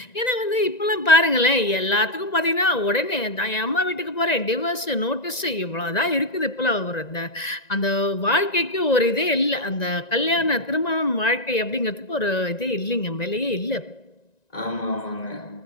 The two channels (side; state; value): right; late; 1.9 ms